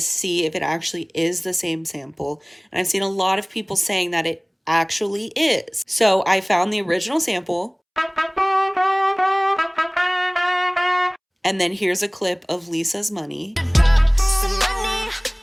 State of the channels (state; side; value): identical; both; correlation 1.00